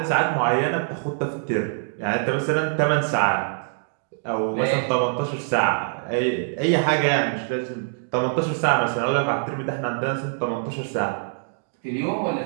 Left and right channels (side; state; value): left; silent; digital silence